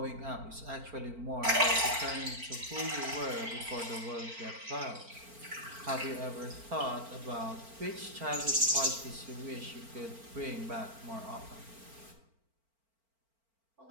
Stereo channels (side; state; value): left; late; 4.4 ms